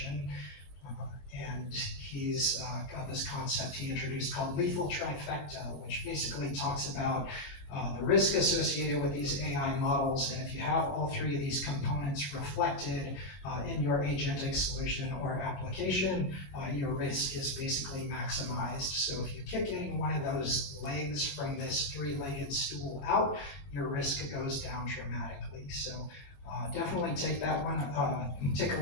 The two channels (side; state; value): right; late; 22 ms